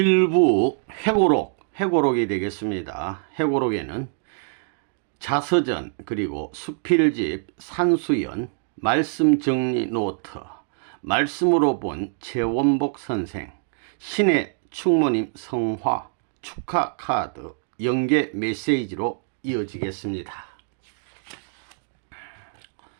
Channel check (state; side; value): silent; left; digital silence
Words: 회고록이 되겠습니다. 회고록에는 자서전, 그리고 수필집, 산수연, 말씀정리 노트, 말씀으로 본 최원복 선생, 신의 충모님 성화, 축하 카드, 연계 메시지로 이어지겠습니다.